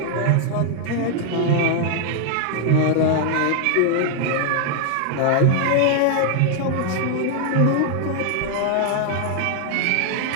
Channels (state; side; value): different; both; correlation 0.00